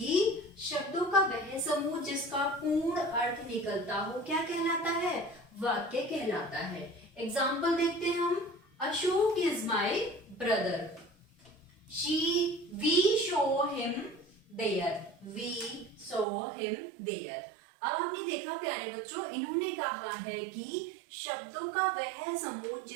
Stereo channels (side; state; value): left; drops out; at 16.2 s